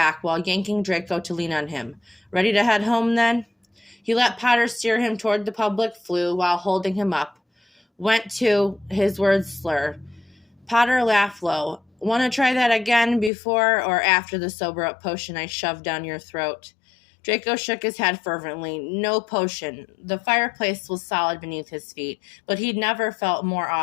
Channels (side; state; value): right; drops out; at 13.3 s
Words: while yanking Draco to lean on him. "Ready to head home, then?" He let Potter steer him toward the public flue while holding him up. Went to, his words slur. Potter laughed low. "Want to try that again before or after the sober-up potion I shoved down your throat?" Draco shook his head fervently. No potion. The fireplace was solid beneath his feet, but he'd never felt more